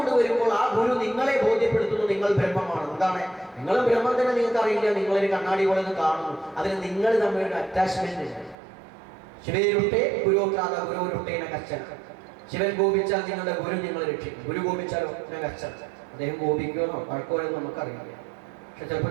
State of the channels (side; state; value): left; drops out; at 8.6 s